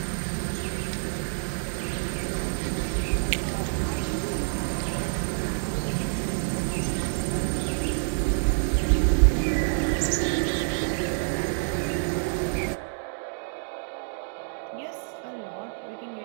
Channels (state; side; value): silent; left; digital silence